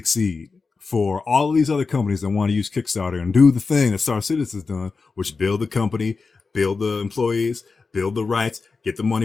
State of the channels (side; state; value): right; quieter; 4.4 dB